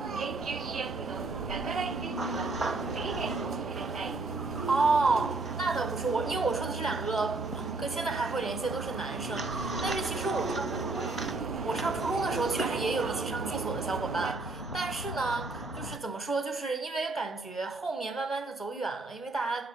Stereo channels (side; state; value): left; quieter; 3.4 dB